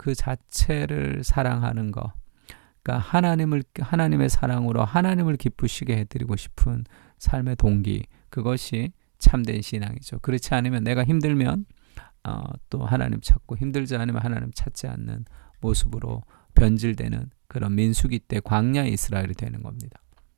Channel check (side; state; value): left; silent; digital silence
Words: 자체를 사랑하는 것, 그러니까 하나님의 사랑으로 하나님을 기쁘시게 해드리고 싶은 삶의 동기, 그것이 참된 신앙이죠. 그렇지 않으면 내가 힘들면 또 하나님 찾고 힘들지 않으면 하나님 찾지 않는 모습으로 변질되는 그런 민수기 때 광야 이스라엘이 되는 겁니다.